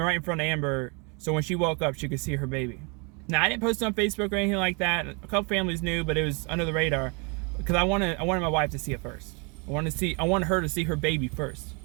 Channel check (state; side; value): quieter; left; 33.0 dB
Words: in front of Amber, so when she woke up, she could see her baby. Now, I didn't post it on Facebook or anything like that. A couple families knew, but it was under the radar because I wanted my wife to see it first. I wanted her to see her baby first.